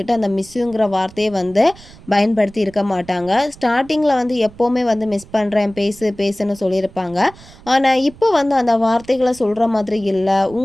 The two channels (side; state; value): right; noise; rumble, 22 dB below the sound